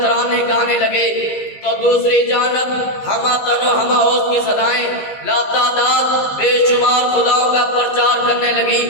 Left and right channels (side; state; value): right; late; 15 ms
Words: گانے لگے، تو دوسری جانب ہما تن و ہما اوز کی صدائیں لاتعداد بے شمار خداؤں کا پرچار کرنے لگی۔